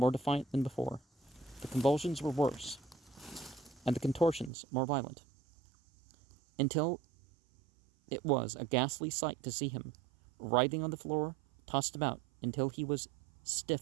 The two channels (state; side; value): drops out; left; at 4.5 s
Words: defiant than before. The convulsions were worse, and the contortions more violent. until it was a ghastly sight to see him, writhing on the floor, tossed about until he was